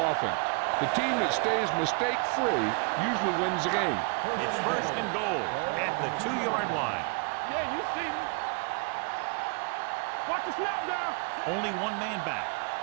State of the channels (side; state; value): left; quieter; 33.2 dB